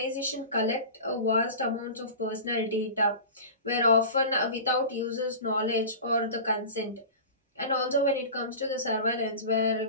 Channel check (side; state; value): both; inverted; correlation -0.33